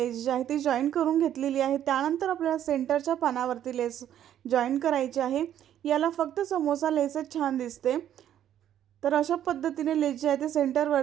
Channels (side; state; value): left; quieter; 10.8 dB